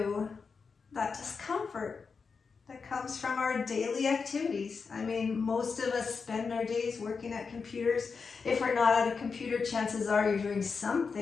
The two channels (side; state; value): right; quieter; 5.2 dB